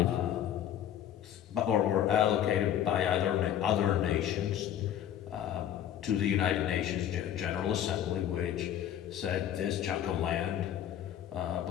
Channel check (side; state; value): right; quieter; 10.6 dB